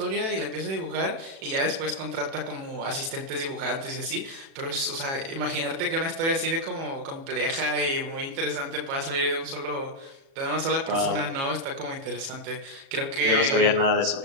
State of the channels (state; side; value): late; left; 36 ms